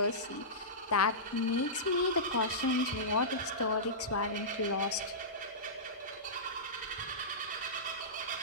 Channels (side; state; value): both; normal; correlation -0.18